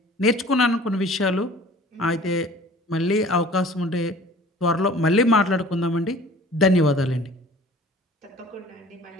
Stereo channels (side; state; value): both; normal; correlation 0.47